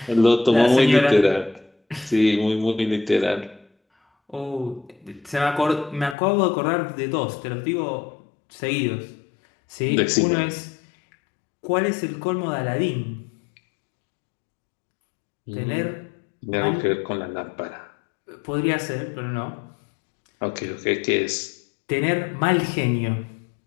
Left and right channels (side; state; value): right; drops out; at 6.2 s